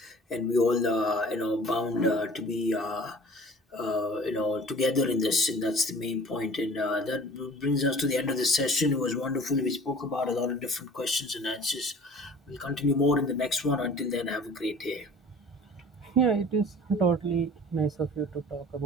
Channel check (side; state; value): both; normal; correlation 0.45